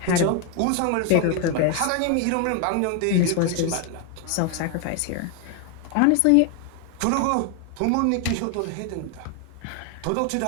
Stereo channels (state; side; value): different; both; correlation 0.01